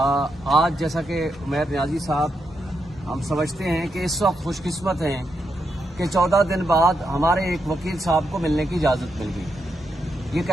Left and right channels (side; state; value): both; normal; correlation 0.83